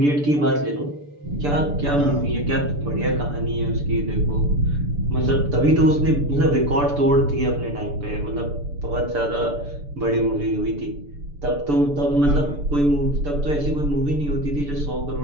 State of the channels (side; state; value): left; late; 6.9 ms